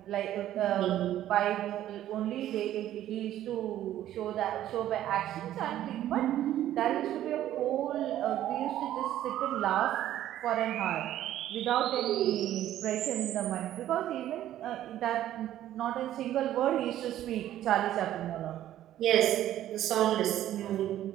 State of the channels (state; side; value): quieter; left; 12.6 dB